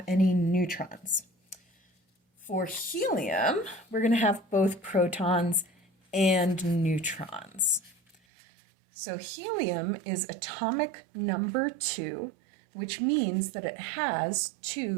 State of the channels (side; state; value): left; drops out; at 8.2 s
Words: any neutrons. For helium, we're going to have both protons and neutrons. So helium is atomic number 2, which means that it has